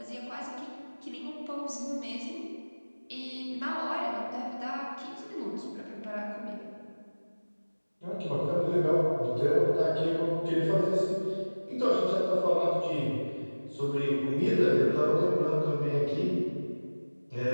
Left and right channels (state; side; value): inverted; both; correlation -1.00